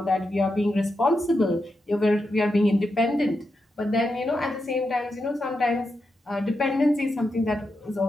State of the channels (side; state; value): both; normal; correlation 0.86